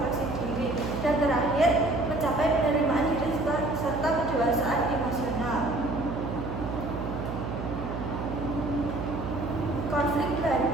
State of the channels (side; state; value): right; noise; hum, 6 dB below the sound